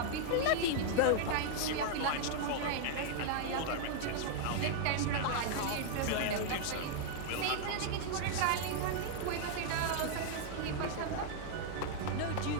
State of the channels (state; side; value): different; both; correlation -0.01